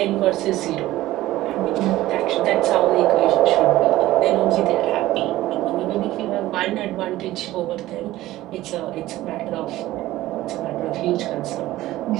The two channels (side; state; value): left; quieter; 16.0 dB